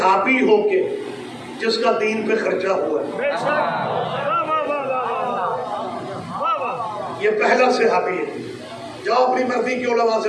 ہو کے جس کا دین پہ خرچہ ہوا ہے، یہ پہلا صحابی ہے۔ جاؤ اپنی مرضی کی علماء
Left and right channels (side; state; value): both; identical; correlation 1.00